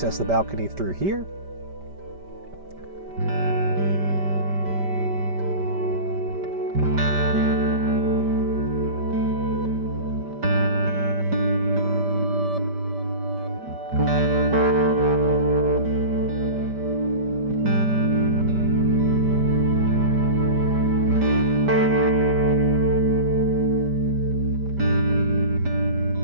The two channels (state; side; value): late; left; 5.1 ms